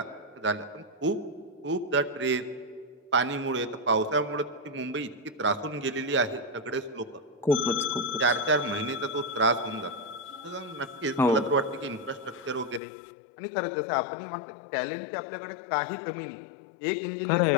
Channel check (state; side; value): drops out; right; at 12.8 s